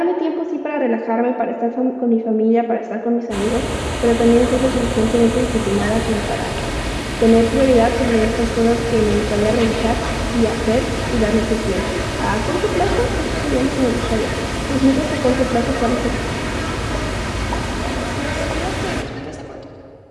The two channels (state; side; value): identical; both; correlation 1.00